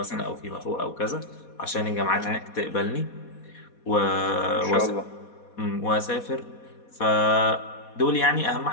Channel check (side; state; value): right; late; 4.2 ms